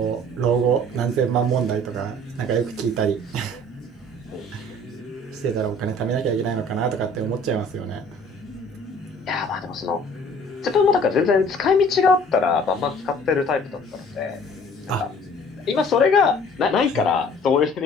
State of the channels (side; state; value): both; normal; correlation 0.52